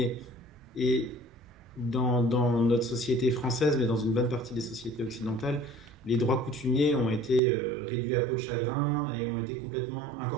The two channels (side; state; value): left; drops out; at 7.4 s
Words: Et dans notre société française, mais dans une bonne partie des sociétés occidentales, les droits coutumiers ont été réduits à peau de chagrin et ont été complètement